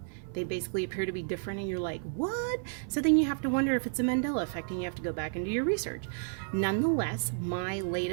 They basically appear to be different and you're like, what? So then you have to wonder if it's a Mandela effect and you have to go back and do your research. Nonetheless, my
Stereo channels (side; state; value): left; silent; 57 dB below the other